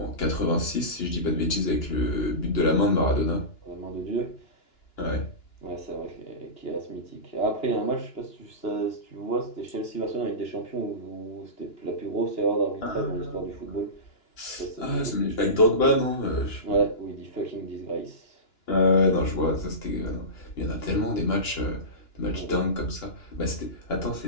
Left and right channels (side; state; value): right; late; 2.9 ms